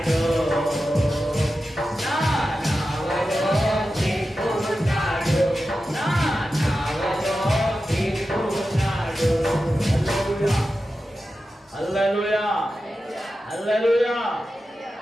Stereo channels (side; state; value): both; normal; correlation 0.92